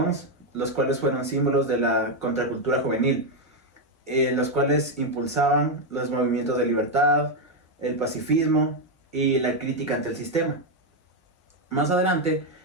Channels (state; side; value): normal; both; correlation 0.04